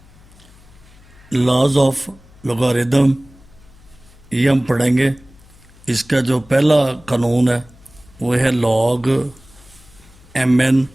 लॉज ऑफ लॉगरिदम ये हम पढ़ेंगे। इसका जो पहला कानून है वो है log M N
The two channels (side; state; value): left; noise; hum, 25 dB below the sound